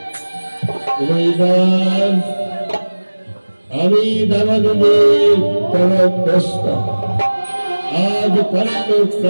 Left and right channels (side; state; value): both; inverted; correlation -1.00